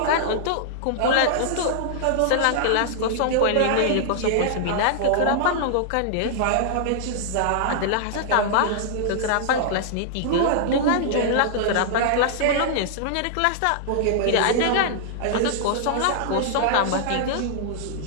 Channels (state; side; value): different; both; correlation -0.01